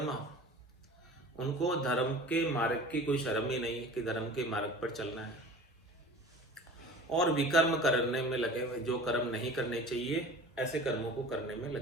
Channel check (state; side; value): normal; both; correlation 0.40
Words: उनको धर्म के मार्ग की कोई शर्म ही नहीं है कि धर्म के मार्ग पर चलना है, और विकर्म करने में लगे हुए, जो कर्म नहीं करने चाहिए ऐसे कर्मों को करने में